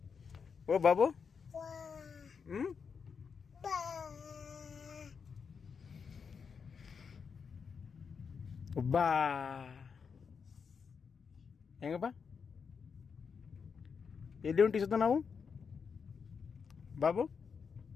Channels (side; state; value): right; quieter; 6.0 dB